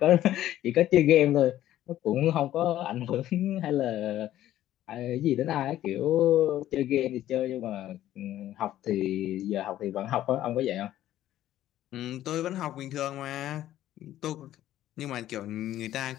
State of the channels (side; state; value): right; quieter; 13.1 dB